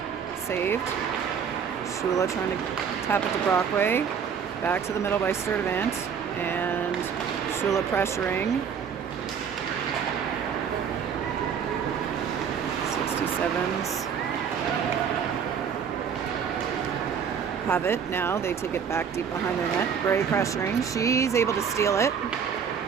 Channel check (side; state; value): left; quieter; 7.2 dB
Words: Saved. Shula trying to tap it to Brockway. Back to the middle by Sturdivant. And Shula pressuring. 67s have it now. They take it back deep behind their net. Bray pressuring. She's able to steal it.